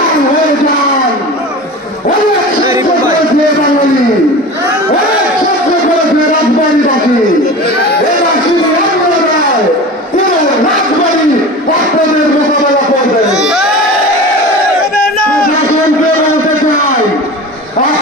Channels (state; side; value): normal; both; correlation 0.33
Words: হয়ে যান। অনেক সহ্য করেছে বাঙালি, অনেক সহ্য করেছে রাজবাড়িবাসী। এরা শুধু অন্য নয়, পুরো রাজবাড়ি আপনাদের মোকাবেলা করবে। প্রশাসনকে বলতে চাই,